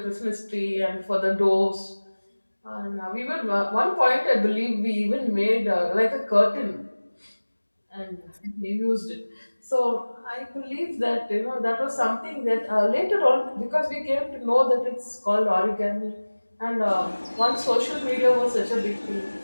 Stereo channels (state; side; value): inverted; both; correlation -1.00